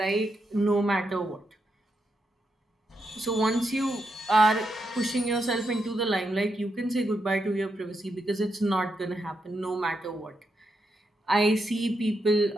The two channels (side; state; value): both; normal; correlation 0.83